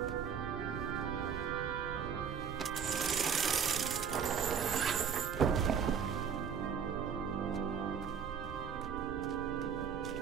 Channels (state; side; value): quieter; left; 7.2 dB